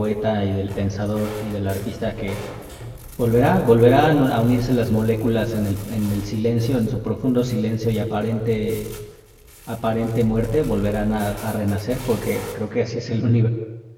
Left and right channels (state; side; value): identical; both; correlation 1.00